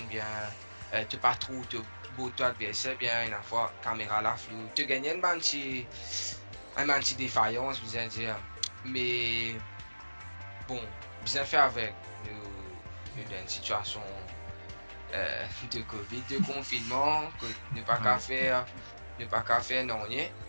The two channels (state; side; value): inverted; both; correlation -1.00